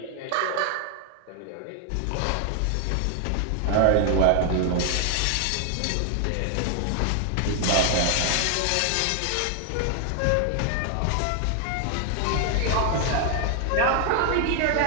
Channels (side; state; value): both; different; correlation 0.00